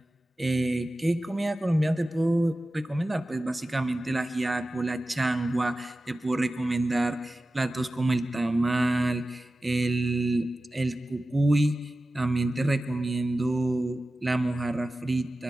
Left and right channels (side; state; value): both; normal; correlation 0.95